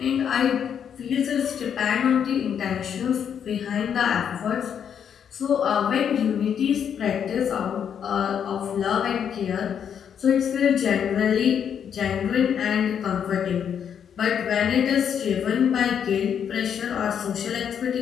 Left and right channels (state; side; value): quieter; right; 8.2 dB